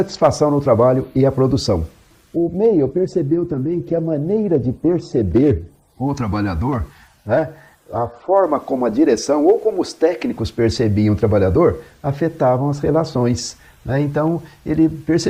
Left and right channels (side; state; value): both; identical; correlation 1.00